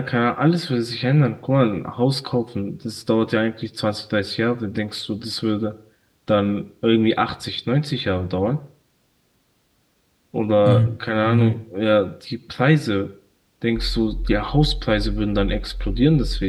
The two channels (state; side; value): identical; both; correlation 1.00